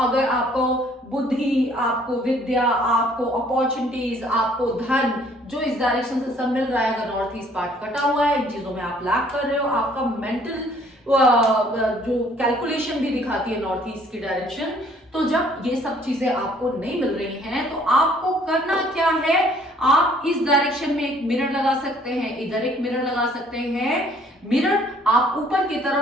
आपको बुद्धि, आपको विद्या, आपको अपॉर्चुनिटीज, आपको धन, जो इस डायरेक्शन से सब मिल रहा है, अगर नॉर्थ ईस्ट पार्ट कटा हुआ है, इन चीजों में आप लैक कर रहे हो, आपका मेंटल जो कैलकुलेशन भी दिखाती है नॉर्थ ईस्ट की डायरेक्शन, तो जब ये सब चीजें आपको नहीं मिल रही हैं तो आपको करना क्या है, आप इस डायरेक्शन में एक मिरर लगा सकते हैं, इधर एक मिरर लगा सकते हैं। मिरर आप ऊपर की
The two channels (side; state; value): both; normal; correlation 0.60